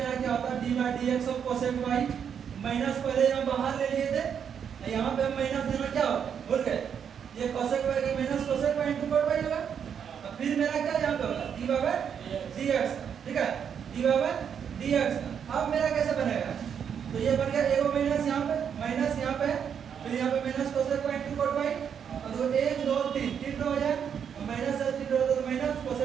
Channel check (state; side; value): quieter; left; 7.8 dB